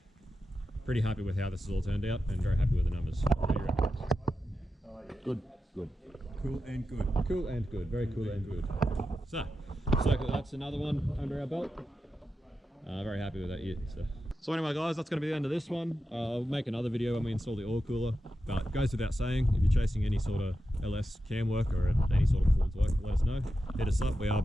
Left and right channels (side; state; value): both; normal; correlation 0.90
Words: pretty happy with how this has all turned out, and very happy with the numbers. What do you reckon? Good. Cool and good. Cool and good. Very cool and good. So that's another one under our belt. Very happy with that year. So anyway, guys, that's going to be the end of this one. I'll make another video when we install the oil cooler. But it goes without saying, if you're chasing any sort of LS cam work or any sort of performance work, let us know. Hit us up. We are